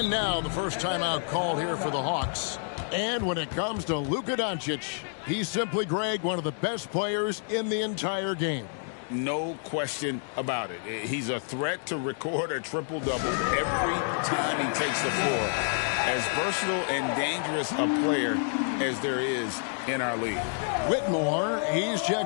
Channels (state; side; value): silent; right; 59 dB below the other